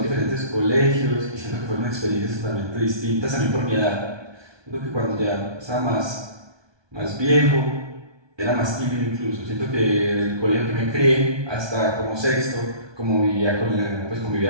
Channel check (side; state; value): left; late; 1.2 ms